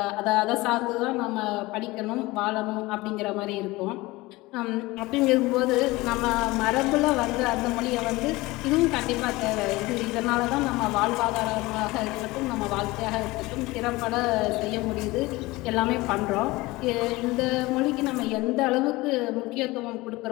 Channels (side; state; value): right; quieter; 20.8 dB